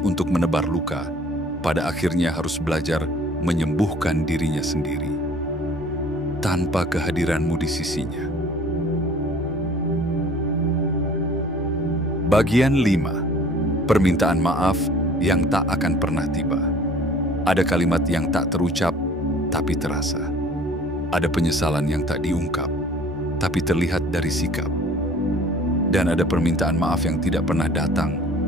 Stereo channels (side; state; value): both; normal; correlation 0.50